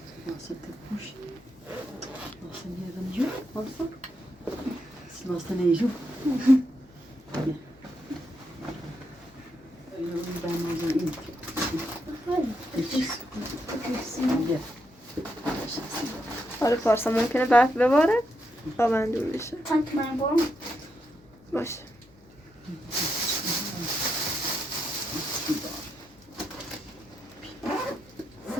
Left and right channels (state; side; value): noise; left; hum, 28 dB below the sound